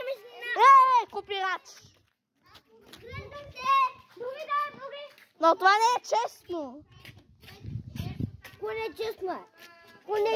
Копирач! Други. Но това не е честно! Кое не е честно?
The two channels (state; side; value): identical; both; correlation 1.00